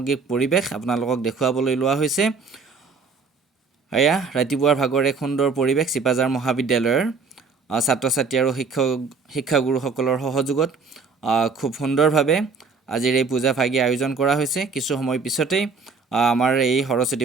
পৰিৱেশ আপোনালোকক দেখুৱাবলৈ লোৱা হৈছে। এয়া ৰাতিপুৱাৰ ভাগৰ এক সুন্দৰ পৰিৱেশ চিপাঝাৰ মহাবিদ্যালয়ৰ ছাত্ৰ ছাত্ৰী আৰু শিক্ষাগুৰুসকলৰ সহযোগত খুব সুন্দৰভাৱে আজিৰ এই পূজা ভাগি আয়োজন কৰা হৈছে। কিছু সময় পিছতেই আমাৰ এই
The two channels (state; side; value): quieter; left; 4.7 dB